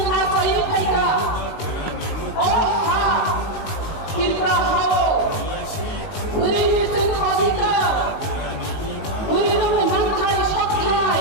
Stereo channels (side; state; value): right; late; 19 ms